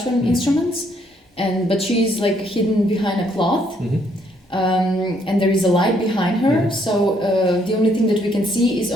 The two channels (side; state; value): both; normal; correlation 0.69